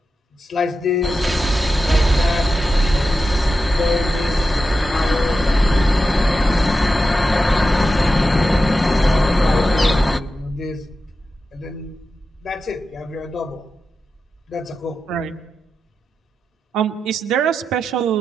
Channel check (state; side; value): normal; both; correlation 0.90